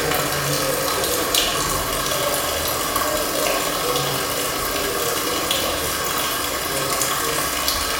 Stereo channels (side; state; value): both; identical; correlation 1.00